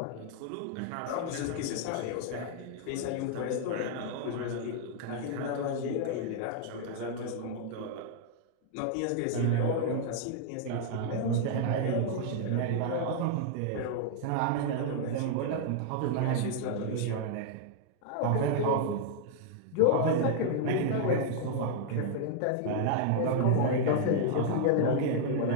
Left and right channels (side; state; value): both; different; correlation -0.01